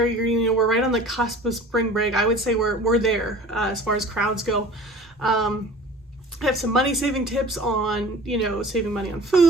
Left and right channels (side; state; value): both; normal; correlation 0.42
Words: We're right on the cusp of spring break. I would say we're there as far as crowds go. I have some money saving tips on, saving money on